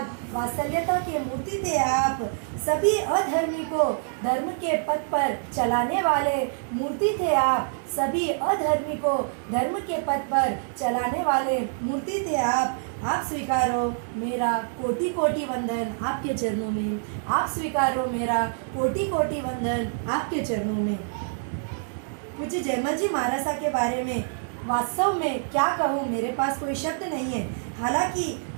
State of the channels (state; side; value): silent; left; digital silence